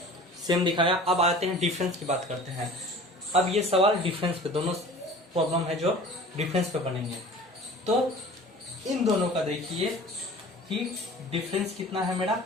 सेम दिखाया। अब आते हैं डिफरेंस की बात करते हैं। अब ये सवाल डिफरेंस पे, दोनों प्रॉब्लम है जो डिफरेंस पे बनेंगे। तो इन दोनों का देखिए कि डिफरेंस कितना है मेरा,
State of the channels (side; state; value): both; normal; correlation 0.42